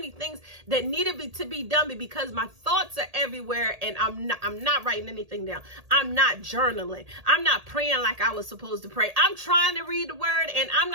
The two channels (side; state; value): left; late; 1.8 ms